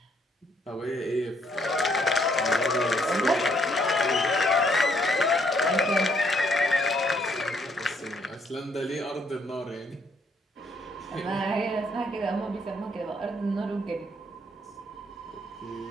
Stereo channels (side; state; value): both; normal; correlation 0.69